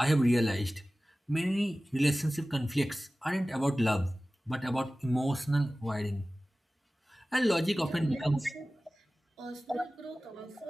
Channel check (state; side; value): normal; both; correlation 0.97